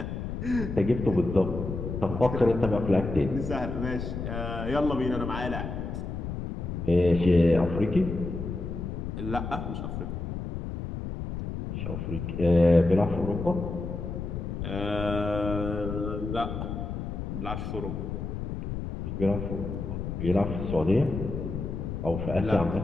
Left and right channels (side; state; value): left; noise; rumble, 5 dB below the sound